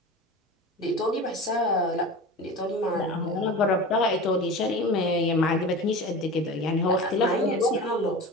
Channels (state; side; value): normal; both; correlation 0.32